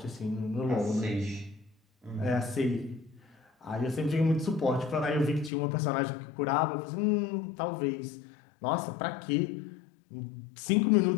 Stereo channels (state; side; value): drops out; right; at 5.5 s